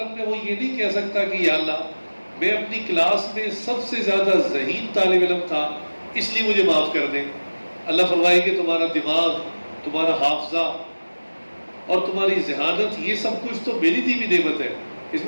میں وہ یہ نہیں کہہ سکتا کہ یا اللہ میں اپنی کلاس میں سب سے زیادہ ذہین طالب علم تھا اس لیے مجھے معاف کر دیں۔ اللہ فرمائے کہ تمہارا دماغ، تمہارا حافظہ اور تمہاری ذہانت یہ سب کچھ تو میری دی ہوئی نعمت ہے، اس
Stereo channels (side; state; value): both; inverted; correlation -1.00